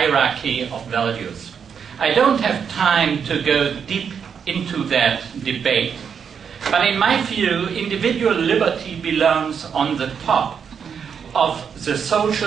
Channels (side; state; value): left; quieter; 7.0 dB